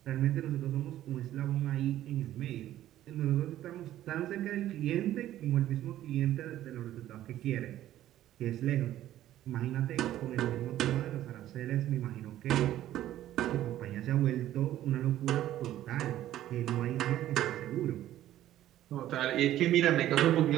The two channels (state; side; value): quieter; left; 13.1 dB